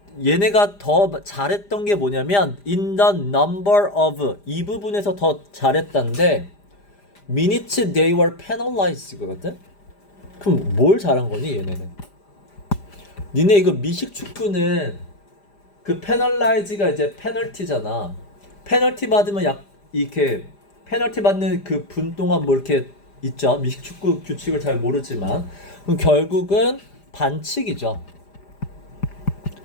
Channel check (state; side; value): late; right; 5.0 ms